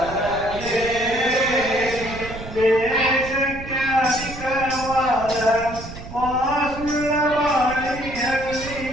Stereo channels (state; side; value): noise; right; rumble, 12 dB below the sound